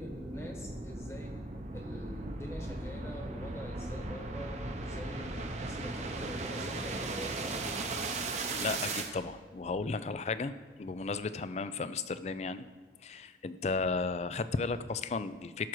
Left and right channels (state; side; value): normal; both; correlation 0.34